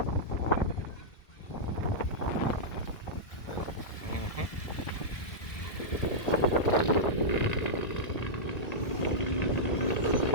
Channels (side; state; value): right; late; 1.6 ms